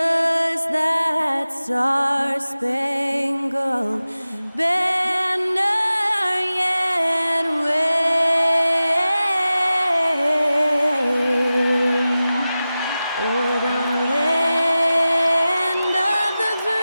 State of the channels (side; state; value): both; inverted; correlation -0.95